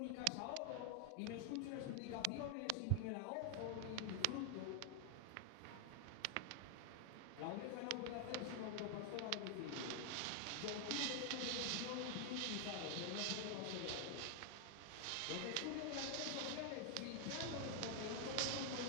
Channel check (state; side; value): different; both; correlation 0.00